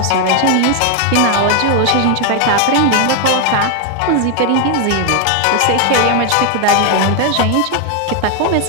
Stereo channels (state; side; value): different; both; correlation 0.01